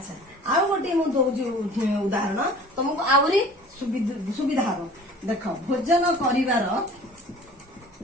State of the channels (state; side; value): normal; both; correlation 0.46